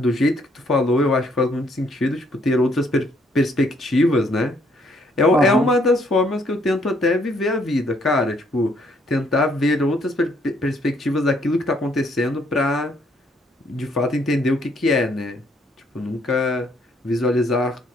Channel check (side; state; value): both; normal; correlation 0.68